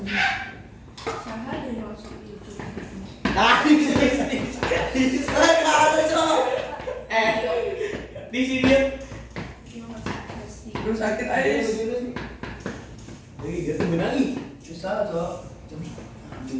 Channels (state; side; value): identical; both; correlation 1.00